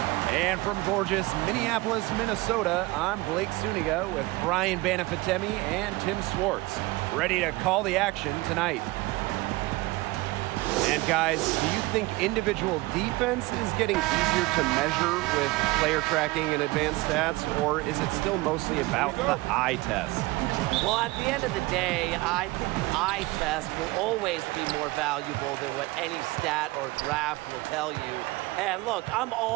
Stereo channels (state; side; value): quieter; left; 21.3 dB